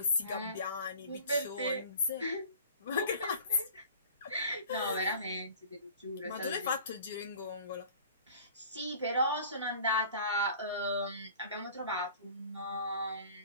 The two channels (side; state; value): both; inverted; correlation -0.46